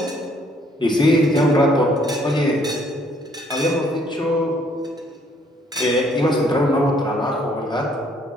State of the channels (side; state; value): both; normal; correlation 0.65